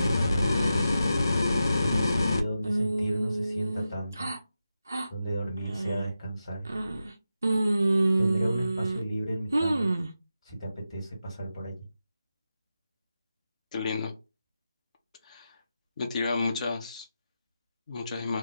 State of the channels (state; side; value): inverted; both; correlation -0.90